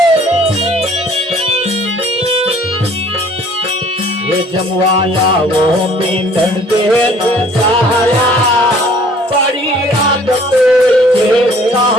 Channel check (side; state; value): both; normal; correlation 0.55